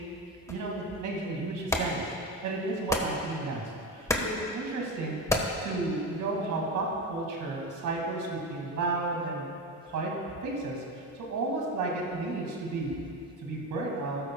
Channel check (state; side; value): normal; both; correlation 0.21